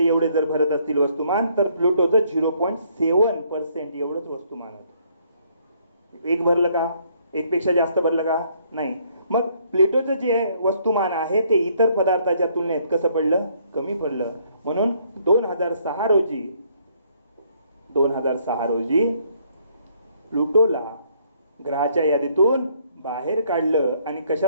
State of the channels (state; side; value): inverted; both; correlation -0.67